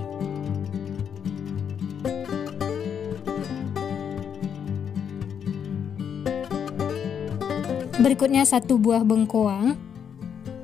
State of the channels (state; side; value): quieter; right; 7.8 dB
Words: Berikutnya 1 buah bengkoang.